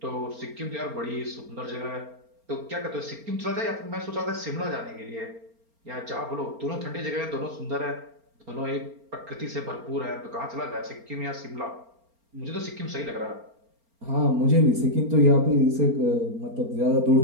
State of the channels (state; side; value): late; left; 4.3 ms